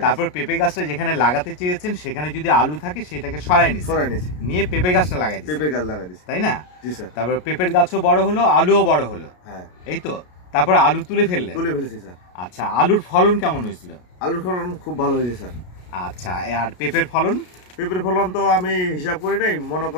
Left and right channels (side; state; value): right; late; 33 ms